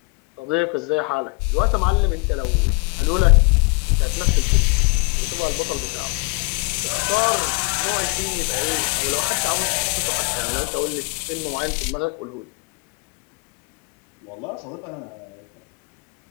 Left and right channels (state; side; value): quieter; right; 29.3 dB